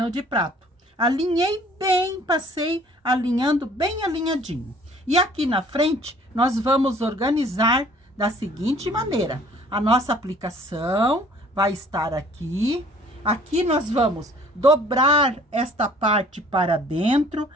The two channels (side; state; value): both; normal; correlation 0.54